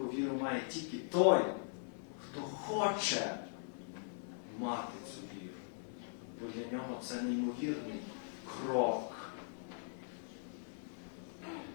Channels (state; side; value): silent; right; digital silence